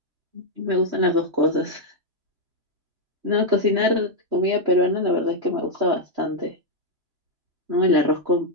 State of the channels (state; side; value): late; left; 3.1 ms